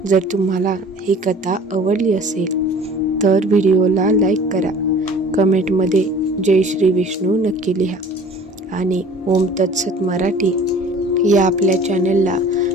जर तुम्हाला ही कथा आवडली असेल तर व्हिडिओला लाईक करा, कमेंटमध्ये जय श्री विष्णू नक्की लिहा, आणि ओम तत्सत मराठी या आपल्या चॅनलला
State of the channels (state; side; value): normal; both; correlation 0.47